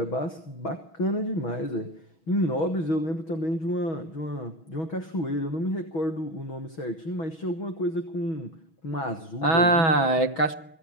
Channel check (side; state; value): right; late; 6.2 ms